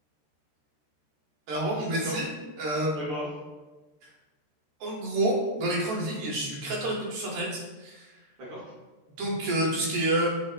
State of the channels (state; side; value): late; left; 14 ms